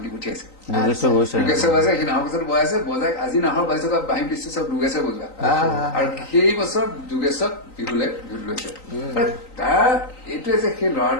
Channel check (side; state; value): right; late; 3.9 ms